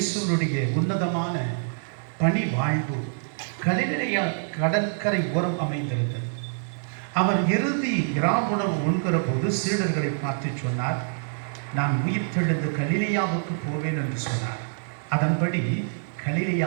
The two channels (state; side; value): silent; left; 59 dB below the other